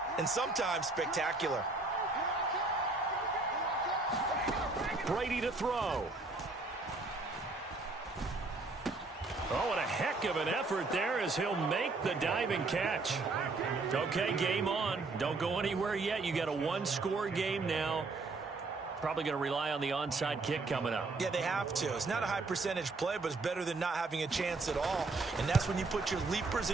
and sometimes spectacular. Brady to throw. Oh, and a heck of an effort there as he'll make the diving catch. Okay, game on. Don't go anywhere yet. You got a one-score game now. Probably going to rely on the onside kick coming up. Yeah, they have to. It's not a high percentage play, but it's better than not having a chance at all. And that's when you put your leapers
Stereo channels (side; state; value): left; quieter; 3.6 dB